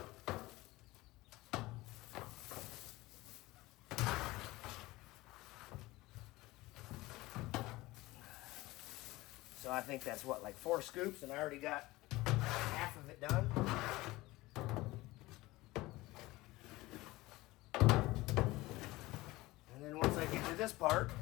So I think that's what, like 4 scoops, and I already got half of it done. And then once I get to this part,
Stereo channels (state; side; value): quieter; right; 19.6 dB